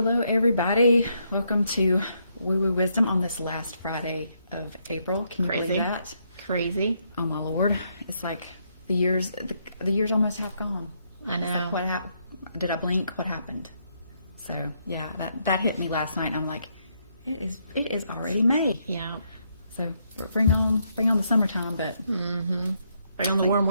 everybody. Welcome to Woo Woo Wisdom on this last Friday of April. Can you believe that? Crazy. Oh my Lord! It's like the years almost half gone. I know. It's like, what happened? Did I blink? What happened? So yeah, that hit me last night. And I'm like, it is already May. Yeah. So bring on the summertime, but Bring on the warm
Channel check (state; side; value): inverted; both; correlation -0.75